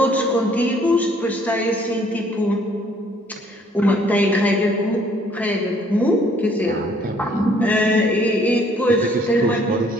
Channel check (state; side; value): normal; both; correlation 0.62